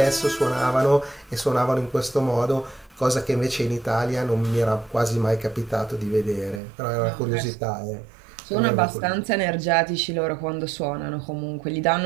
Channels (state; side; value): drops out; left; at 6.6 s